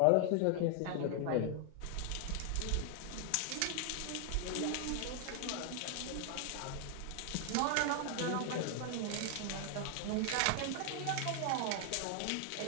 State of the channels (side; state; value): both; different; correlation 0.00